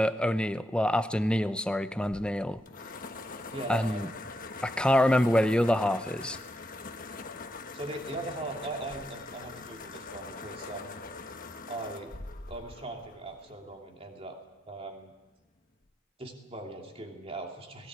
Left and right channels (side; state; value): both; normal; correlation 0.83